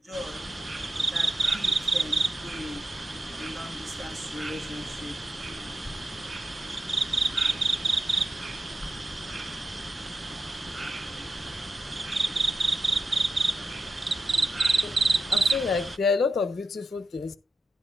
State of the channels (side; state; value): both; normal; correlation 0.89